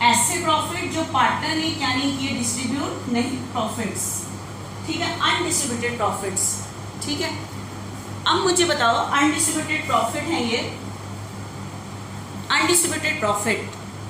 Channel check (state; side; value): identical; both; correlation 1.00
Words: ऐसे प्रॉफिट जो पार्टनर ने क्या नहीं किए, डिस्ट्रीब्यूट नहीं, प्रॉफिट्स। ठीक है, अनडिस्ट्रीब्यूटेड प्रॉफिट्स। ठीक है, अब मुझे बताओ अनडिस्ट्रीब्यूटेड प्रॉफिट है ये अनडिस्ट्रीब्यूटेड प्रॉफिट।